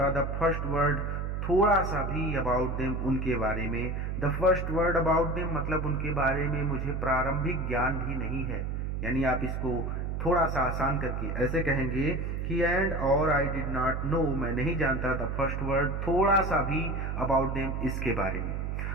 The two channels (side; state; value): right; noise; hum, 2 dB below the sound